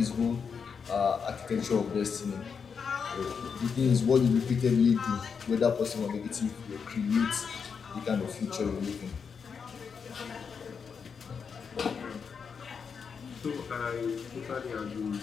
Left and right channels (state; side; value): quieter; right; 6.1 dB